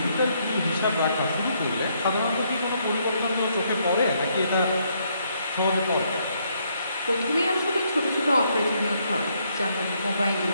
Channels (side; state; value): both; inverted; correlation -0.72